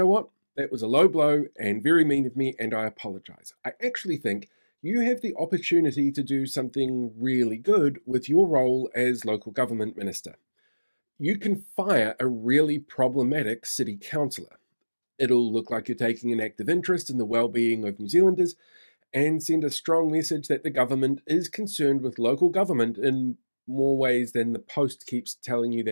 what? That was a low blow and very mean of me, and I apologize. I actually think you have the opportunity to do something really good with your role as local government minister. You can fire a really problematic city councillor. It'll look like you're taking an active interest in the well-being of New Zealanders and send a strong message that the government is concerned with local government in more ways than the Post keeps telling you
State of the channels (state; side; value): inverted; both; correlation -1.00